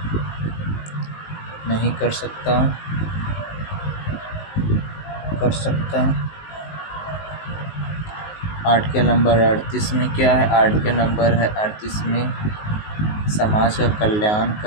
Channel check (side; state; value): right; late; 19 ms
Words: नहीं कर सकता। आर्टिकल नंबर 38 में क्या है? आर्टिकल नंबर 38 में समाज का कल्याण